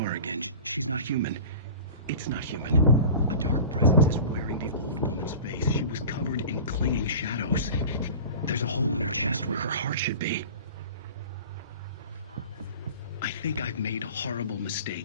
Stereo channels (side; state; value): both; inverted; correlation -0.37